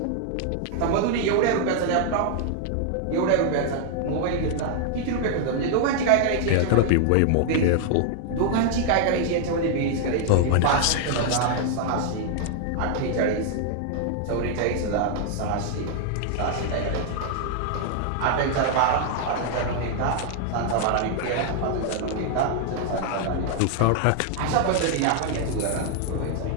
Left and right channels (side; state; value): both; different; correlation 0.00